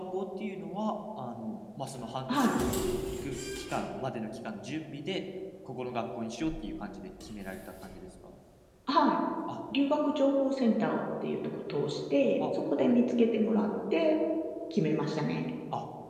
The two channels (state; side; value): identical; both; correlation 1.00